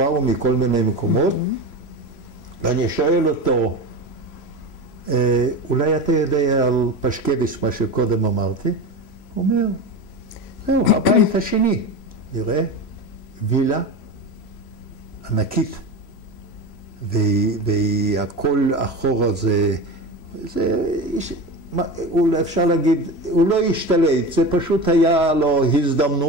מכל מיני מקומות, ואני שואל אותו, אולי אתה יודע על פשקביץ' מה שקודם אמרתי? הוא אומר, זהו, הבית השני, נראה, וילה ענקית, והכל אחורה זה אפשר להגיד, הוא לא השתלט, זה פשוט היה לו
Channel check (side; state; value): right; late; 3.0 ms